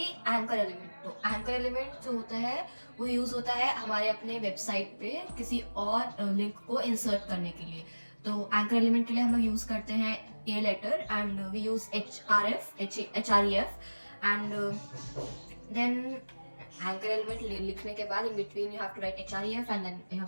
एंकर एलिमेंट. तो एंकर एलिमेंट जो होता है वो यूज़ होता है हमारे अपने वेबसाइट पे किसी और लिंक को इंसर्ट करने के लिए. तो एंकर एलिमेंट के लिए हम लोग यूज़ करते हैं A letter and we use HREF and then anchor element लिखने के बाद in between you have to write HREF and then you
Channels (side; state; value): both; inverted; correlation -1.00